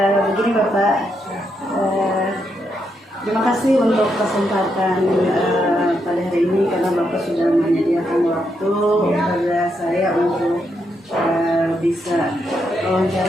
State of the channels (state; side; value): normal; both; correlation 0.80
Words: Begini, Bapak. Terima kasih untuk kesempatan pada hari ini karena Bapak sudah menyediakan waktu kepada saya untuk bisa